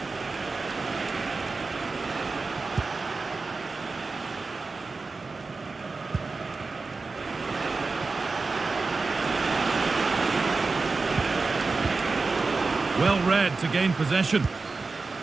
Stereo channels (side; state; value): left; quieter; 4.0 dB